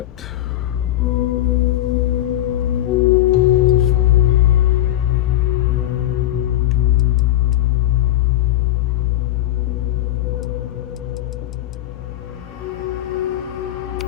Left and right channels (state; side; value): quieter; right; 13.5 dB